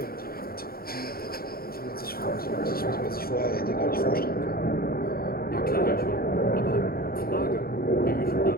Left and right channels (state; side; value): late; right; 0.44 ms